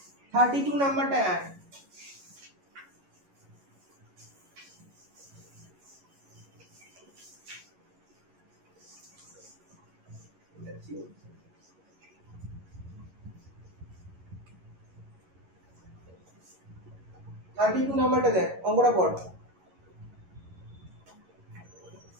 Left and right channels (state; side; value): late; left; 11 ms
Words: 32 নাম্বারটা এক। থার্টি টু নাম্বারটা দেখ, অঙ্কটা পড়।